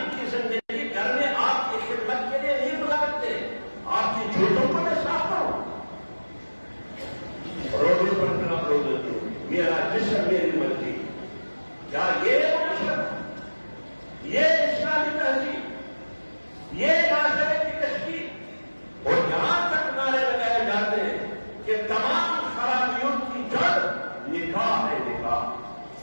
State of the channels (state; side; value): inverted; both; correlation -1.00